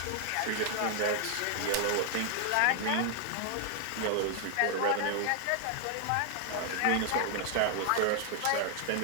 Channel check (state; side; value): different; both; correlation 0.00